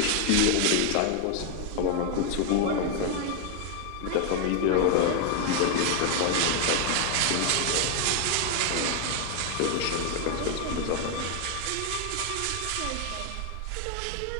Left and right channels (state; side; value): different; both; correlation 0.00